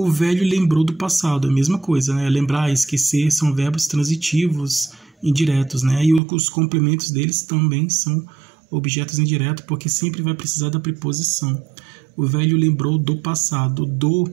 velho lembrou do passado, a mesma coisa, né? Lembrar, esquecer, são verbos transitivos indiretos, né? E os complementos deles também são objetos indiretos, porque sempre vai precisar da preposição. O velho lembrou do passado, do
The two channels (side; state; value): left; drops out; at 6.2 s